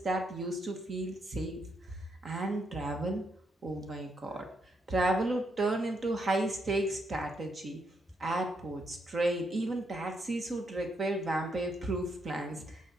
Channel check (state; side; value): normal; both; correlation 0.77